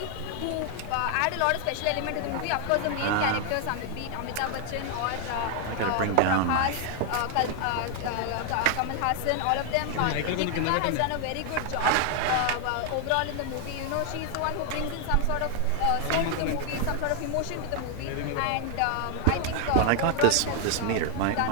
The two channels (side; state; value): both; different; correlation 0.00